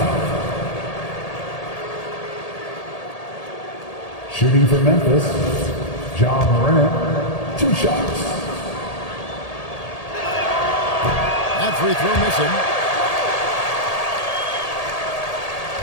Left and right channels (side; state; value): right; late; 1.8 ms